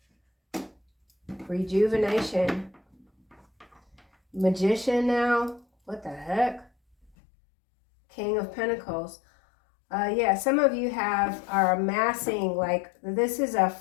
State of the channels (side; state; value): right; drops out; at 7.1 s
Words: Rejuvenation. Magician now. What the heck? King of Pentacles. Yeah, some of you are amassing, like, this is a